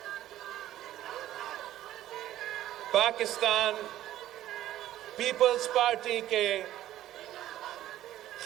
پاکستان پیپلز پارٹی کے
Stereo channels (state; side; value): quieter; left; 13.4 dB